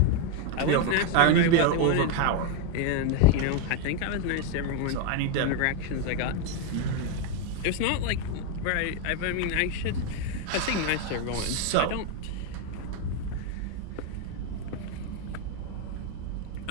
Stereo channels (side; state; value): both; different; correlation 0.01